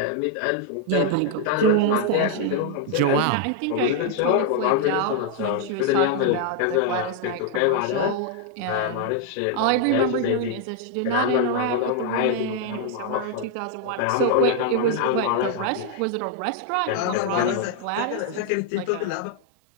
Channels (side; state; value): both; different; correlation 0.00